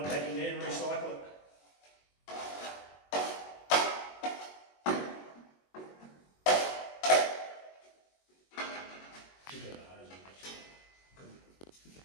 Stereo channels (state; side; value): late; right; 22 ms